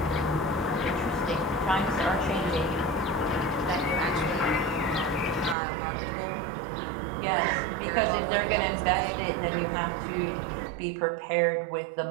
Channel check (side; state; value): left; drops out; at 5.6 s